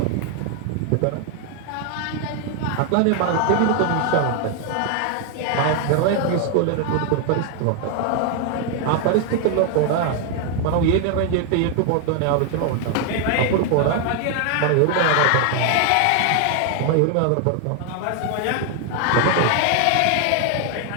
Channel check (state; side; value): different; both; correlation 0.00